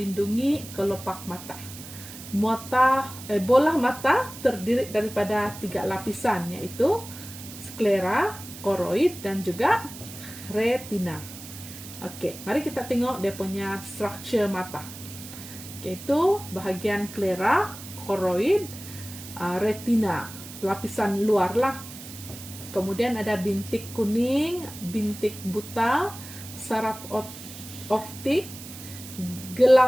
kelopak mata. Bola mata terdiri daripada 3 lapisan, yaitu sklera, koroid, dan juga retina. Oke, mari kita tengok dia punya structure mata. Yaitu bahagian sklera, koroid, retina, lapisan luar lah. Kemudian ada bintik kuning, bintik buta, saraf optik,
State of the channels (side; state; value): right; noise; hiss, 14 dB below the sound